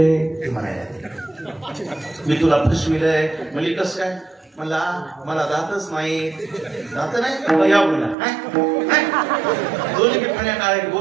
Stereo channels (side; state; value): left; drops out; at 8.2 s